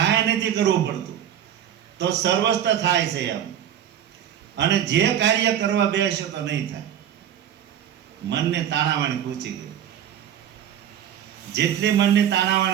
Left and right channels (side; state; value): left; quieter; 9.9 dB